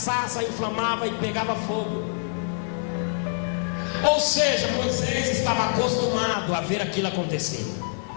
inflamava e pegava fogo. Ou seja, Moisés estava acostumado a ver aquilo acontecer.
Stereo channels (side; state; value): right; silent; digital silence